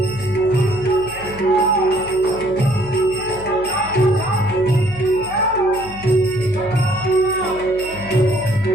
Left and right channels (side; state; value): right; noise; hum, 18 dB below the sound